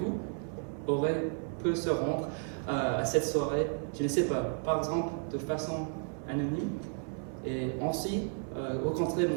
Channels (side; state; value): left; silent; 56 dB below the other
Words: peut se rendre à cette soirée je ne sais pas, par exemple de façon anonyme, et ainsi rencontrer